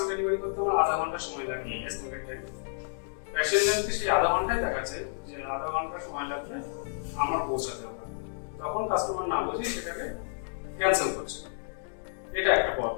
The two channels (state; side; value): silent; right; digital silence